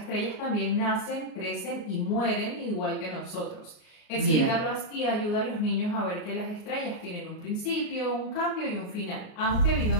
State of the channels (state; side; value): late; right; 38 ms